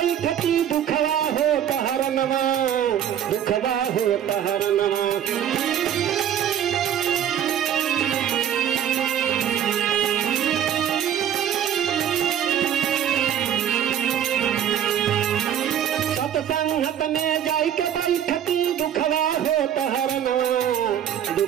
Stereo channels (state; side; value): quieter; left; 9.9 dB